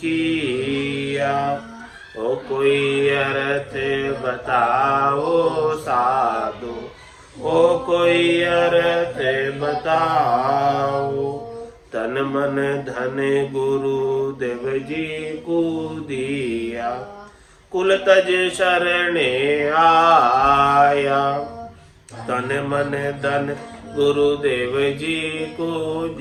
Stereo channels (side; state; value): both; identical; correlation 1.00